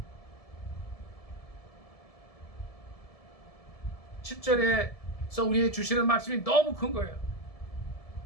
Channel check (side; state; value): right; late; 1.7 ms